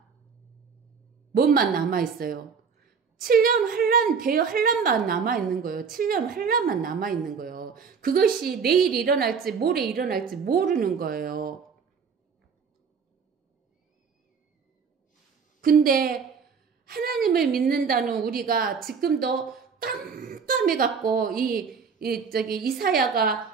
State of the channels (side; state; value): left; quieter; 5.9 dB